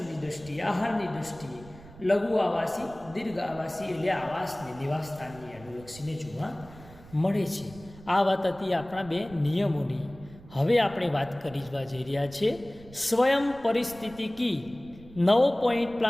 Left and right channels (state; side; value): noise; right; rumble, 20 dB below the sound